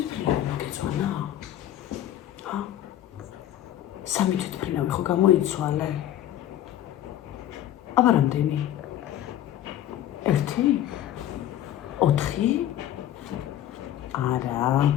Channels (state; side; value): quieter; right; 12.2 dB